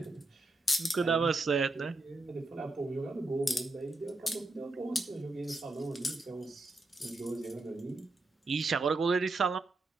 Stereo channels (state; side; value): quieter; left; 3.1 dB